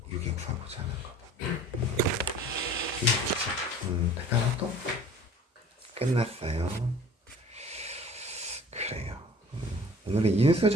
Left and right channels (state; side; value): normal; both; correlation 0.47